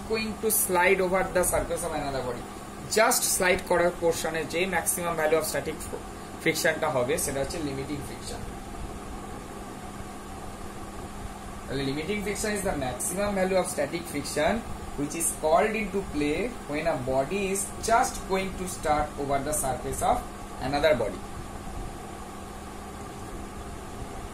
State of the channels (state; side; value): identical; both; correlation 1.00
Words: going to slide over the surface of another body। Just slide করার পোর্শনে যে maximum value of static ফ্রিকশনটা হবে সেটা হচ্ছে limiting friction. Limiting friction is the maximum value of static friction which is called into play when a body is just going to start over the surface of another body।